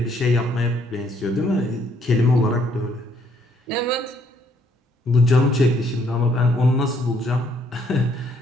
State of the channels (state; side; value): normal; both; correlation 0.67